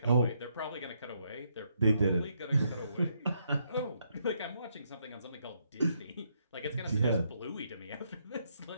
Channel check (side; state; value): both; inverted; correlation -0.76